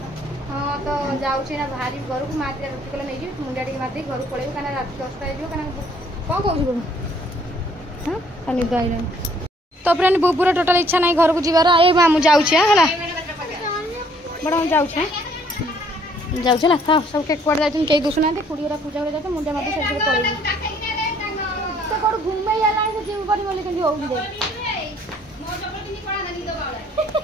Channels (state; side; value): normal; both; correlation 0.62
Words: हाँ तो जाऊँ ना भारी घर को मार रोटी कले नहीं जी मुंडा टी मार घर पड़े कहीं रात 10टा कौन कौन हाँ निद आई तो फ्रेंड बुबुर टोटाल इच्छा नहीं घर को जीवार ए मामू जाऊँ है बड़ा हम जाऊँ जाऊँ था सब केक कुआड़े जाते कई दुसुना कुड़ीरा पूजा कर जाते मुंडा मत सब पड़ेगी तो कौन घूमे जीव पड़ी बोले कि हो